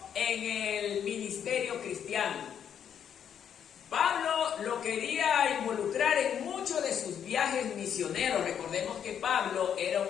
en el ministerio cristiano. Pablo lo quería involucrar en muchos de sus viajes misioneros. Recordemos que Pablo era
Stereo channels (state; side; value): quieter; right; 8.6 dB